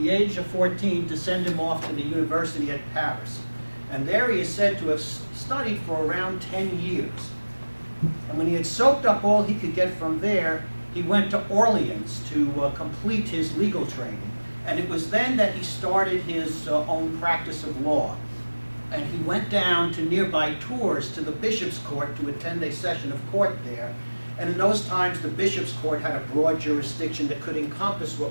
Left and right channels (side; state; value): both; inverted; correlation -1.00